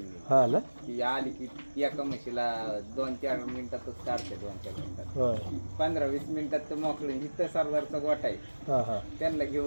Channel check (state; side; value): inverted; both; correlation -1.00